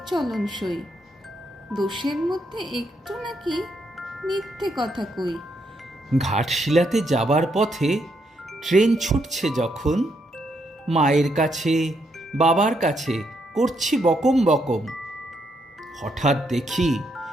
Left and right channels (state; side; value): normal; both; correlation 0.77